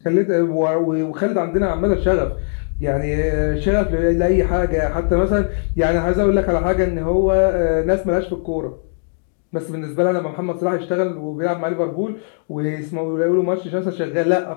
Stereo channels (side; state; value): right; silent; digital silence